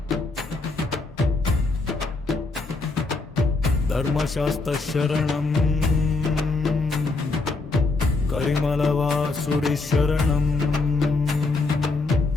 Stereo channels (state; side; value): quieter; right; 3.6 dB